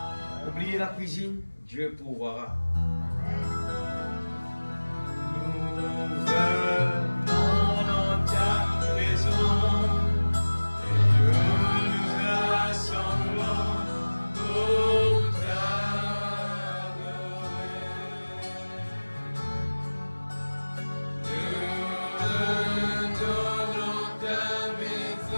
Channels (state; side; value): inverted; both; correlation -1.00